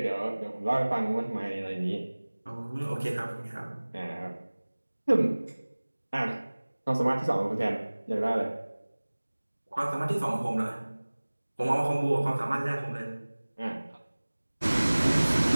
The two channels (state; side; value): inverted; both; correlation -1.00